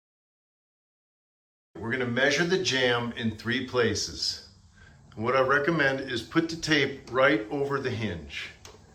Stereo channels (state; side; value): identical; both; correlation 1.00